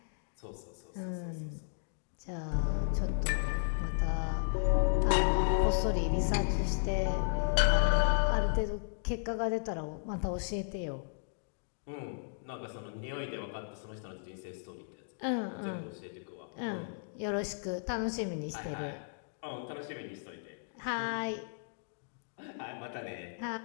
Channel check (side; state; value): right; silent; digital silence